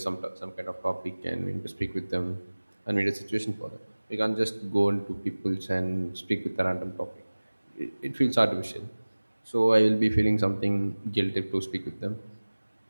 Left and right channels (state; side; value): inverted; both; correlation -1.00